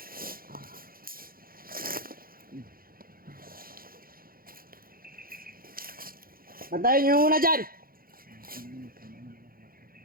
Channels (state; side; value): late; left; 0.42 ms